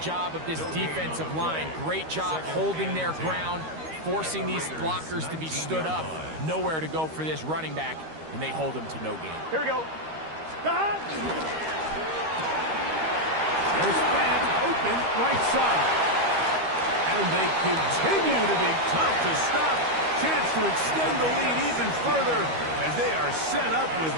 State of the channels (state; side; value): late; left; 13 ms